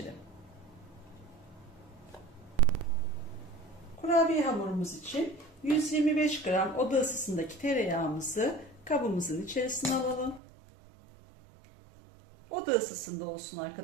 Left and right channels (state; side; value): drops out; left; at 10.4 s